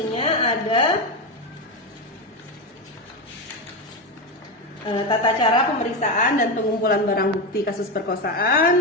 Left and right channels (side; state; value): both; normal; correlation 0.14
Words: ada tata cara pemeriksaan dan pengumpulan barang bukti kasus